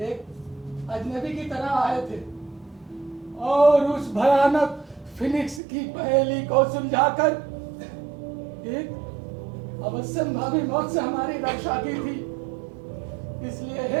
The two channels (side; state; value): left; drops out; at 5.6 s